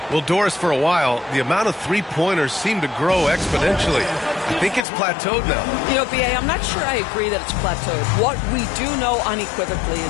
Well, Doris, for a while, the amount of three-pointers seemed to grow exponentially. I think it's plateaued now. You know, B.A., I'm not sure I agree that it's plateaued. What we do know unequivocally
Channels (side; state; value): right; drops out; at 4.9 s